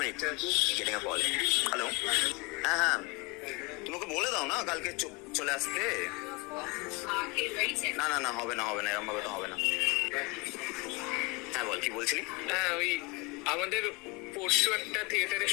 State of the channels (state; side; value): quieter; right; 27.6 dB